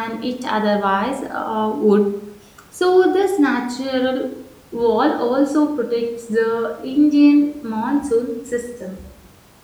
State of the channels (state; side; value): identical; both; correlation 1.00